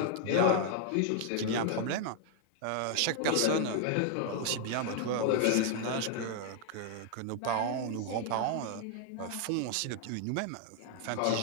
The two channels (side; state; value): both; different; correlation 0.00